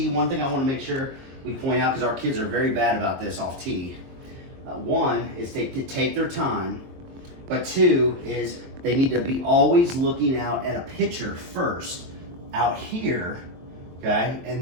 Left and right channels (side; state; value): left; late; 22 ms